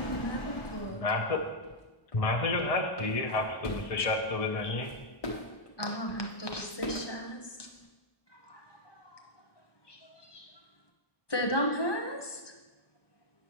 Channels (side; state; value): right; late; 1.2 ms